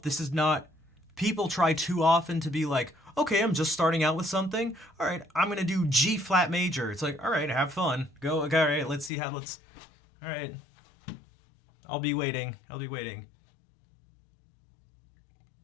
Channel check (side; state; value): right; drops out; at 9.1 s